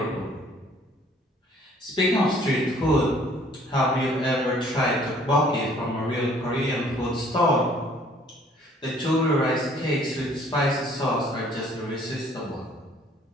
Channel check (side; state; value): both; normal; correlation 0.58